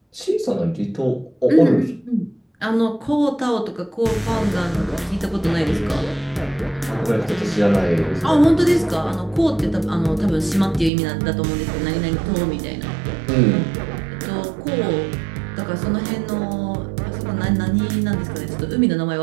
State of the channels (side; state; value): left; drops out; at 10.9 s